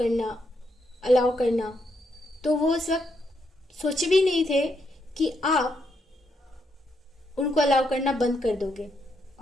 अलाउ करना, तो वो उस वक्त सोचे भी नहीं थे कि आप उनको अलाउ करना बंद कर दोगे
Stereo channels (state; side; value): normal; both; correlation 0.78